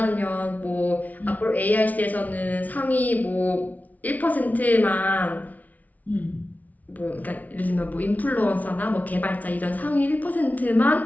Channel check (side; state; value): right; late; 0.074 ms